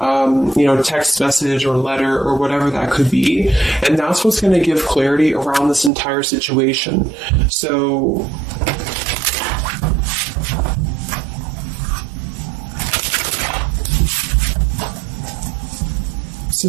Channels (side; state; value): left; drops out; at 5.9 s